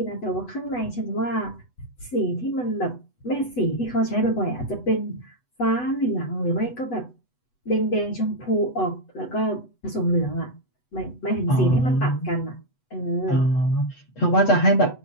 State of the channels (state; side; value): late; right; 8.1 ms